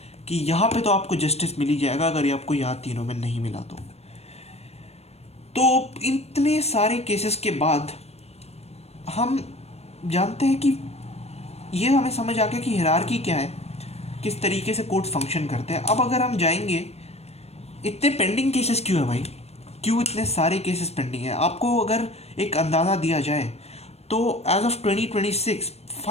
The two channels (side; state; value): right; late; 0.31 ms